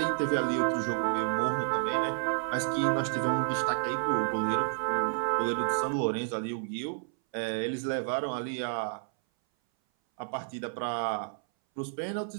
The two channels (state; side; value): silent; left; 58 dB below the other